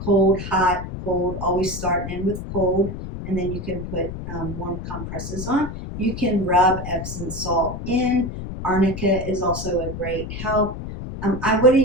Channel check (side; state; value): left; noise; rumble, 8 dB below the sound